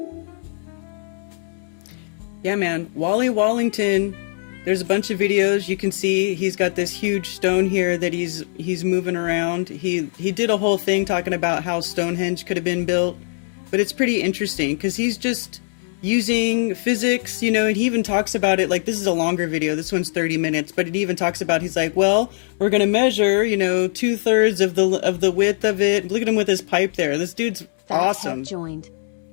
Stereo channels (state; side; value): silent; right; 65 dB below the other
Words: Yeah, man. Wally Wallington. There's a bunch of videos you can see. He's got this huge stone here that he's moving around. He did a whole thing talking about how Stonehenge could have been built, but it's pretty interesting because he's just using physics, and he even talks about it. Like, this is a longer video. This one's 30 minutes, but it even talks about, he's like, well, we're gonna measure, 2/3 of the width of it. Look at him with his pipe there. This dude's awesome. Joined.